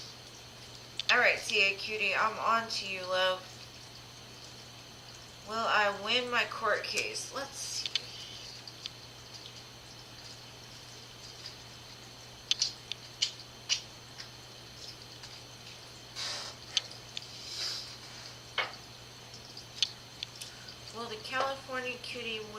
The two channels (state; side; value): identical; both; correlation 1.00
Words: Alright, CA Cutie, I'm on to you, love. Will I win my court case? Let's see. Will the California Cutie